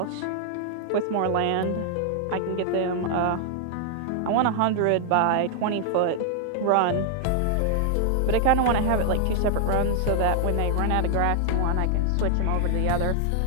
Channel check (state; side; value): different; both; correlation 0.00